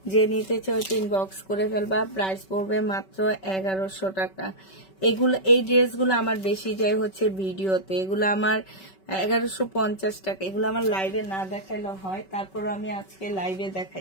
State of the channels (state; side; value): late; right; 5.3 ms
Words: যে নিতে চাও ইনবক্স করে ফেলবা। প্রাইস পড়বে মাত্র 1100 টাকা। এগুলো, এই ড্রেসগুলো আমার বেশি যায় হচ্ছে ভিডিওতে, এগুলো আমার 1150 টাকা। এগুলো আমার লাইভে না দেখাইলে হয়, তারপর আমি আজকে লাইভে